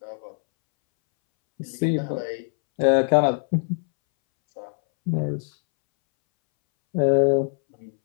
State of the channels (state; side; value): silent; right; 63 dB below the other